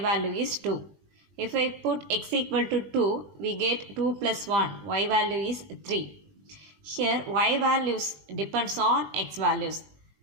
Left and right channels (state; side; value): late; left; 20 ms